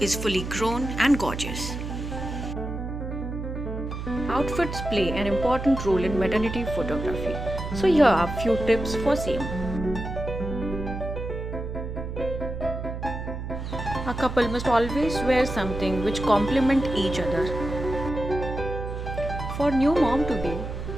is fully grown and gorgeous. Outfits play an important role in maternity photography. So here are a few tips for same. A couple must always wear something which complement each other. For new mom to be,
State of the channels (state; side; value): noise; right; hum, 6 dB below the sound